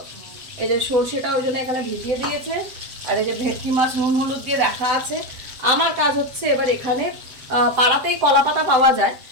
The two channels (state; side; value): late; left; 7.8 ms